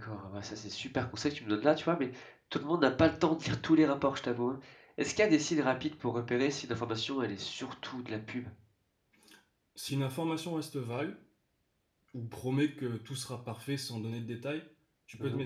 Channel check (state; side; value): identical; both; correlation 1.00